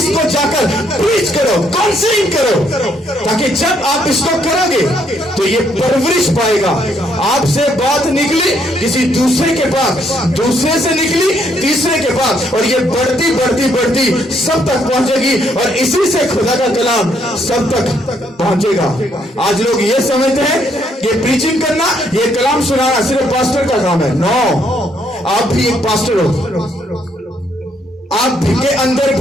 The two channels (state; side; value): normal; both; correlation 0.71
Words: जाकर प्रीच करो, काउंसलिंग करो, ताकि जब आप इसको करोगे तो ये परवरिश पाएगा। आपसे बात निकली किसी दूसरे के पास, दूसरे से निकली तीसरे के पास, और ये बढ़ती बढ़ती बढ़ती सब तक पहुंचेगी, और इसी से खुदा का कलाम सब तक पहुंचेगा। आज लोग ये समझते हैं कि प्रीचिंग करना, ये कलाम सुनाना सिर्फ पास्टर का काम है। नो, आप भी एक पास्टर हो। आप के अंदर